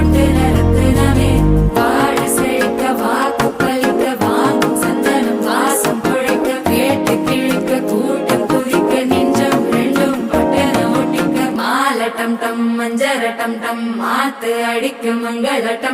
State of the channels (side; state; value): both; identical; correlation 1.00